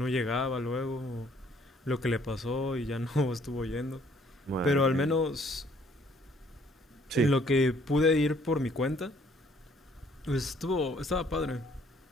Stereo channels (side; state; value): both; normal; correlation 0.63